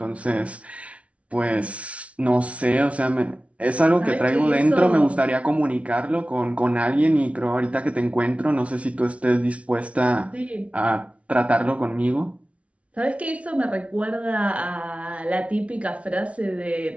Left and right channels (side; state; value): left; late; 0.063 ms